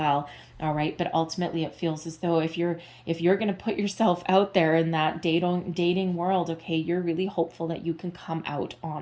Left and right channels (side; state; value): both; identical; correlation 1.00